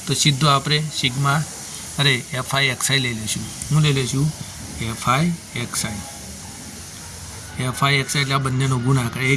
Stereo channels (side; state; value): both; identical; correlation 1.00